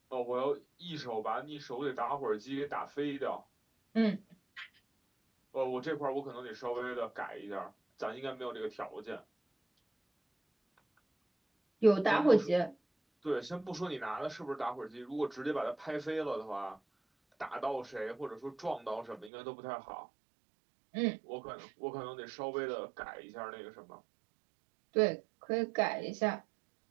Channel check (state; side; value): drops out; left; at 19.3 s